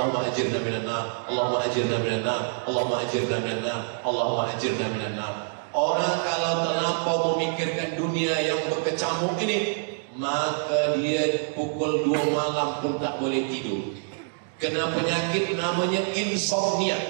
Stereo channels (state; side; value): silent; left; digital silence